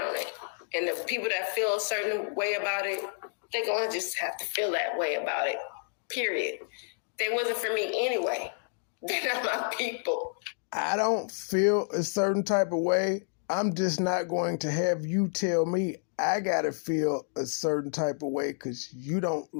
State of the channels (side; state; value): right; silent; digital silence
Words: on it. And the people that feel a certain way about it, they're going to just have to feel that way about it. Period. They wasn't for me anyway. They're not my people. I don't feel a certain type of way. I'm just not going to have you tell me I got to feel a certain type of way because you don't